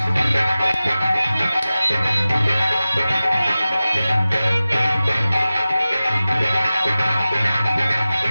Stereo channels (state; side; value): inverted; both; correlation -0.96